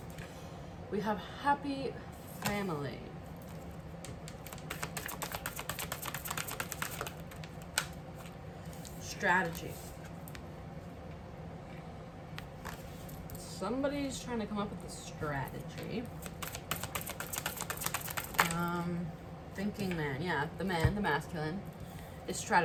We have happy family. Strategy. Somebody's trying to come up with a strategy. Thinking man. Yeah, the man, the masculine, is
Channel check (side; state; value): both; identical; correlation 1.00